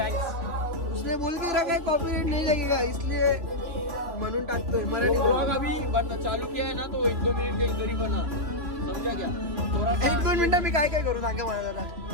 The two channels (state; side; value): late; left; 3.0 ms